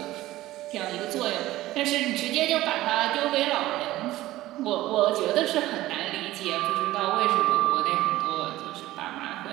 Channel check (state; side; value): quieter; left; 16.2 dB